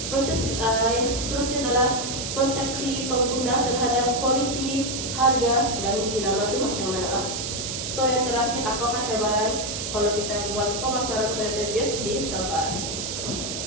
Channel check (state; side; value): noise; right; hiss, 4 dB below the sound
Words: Proses yang seterusnya adalah persepsi pengguna terhadap kualiti, harga, dan jenama itu macam mana lah. So yang terakhir, apakah cabaran kalau kita buat pemasaran Toyota BIOS di Sabah.